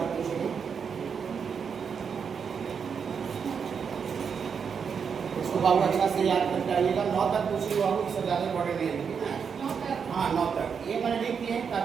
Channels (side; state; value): left; quieter; 6.5 dB